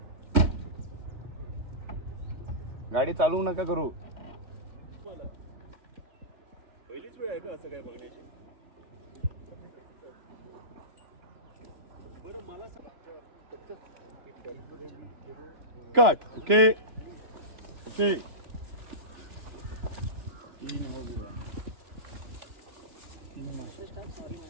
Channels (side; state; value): left; late; 3.0 ms